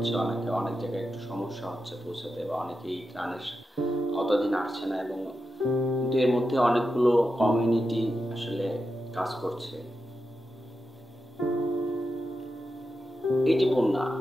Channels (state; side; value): normal; both; correlation 0.89